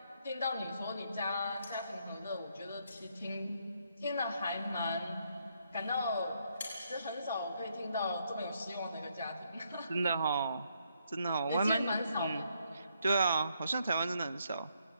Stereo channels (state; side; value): inverted; both; correlation -0.74